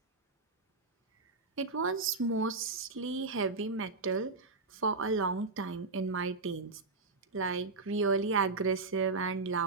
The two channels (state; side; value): quieter; left; 3.8 dB